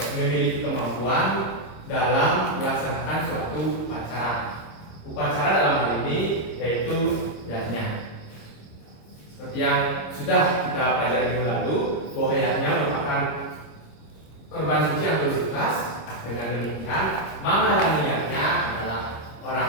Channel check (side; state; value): right; late; 26 ms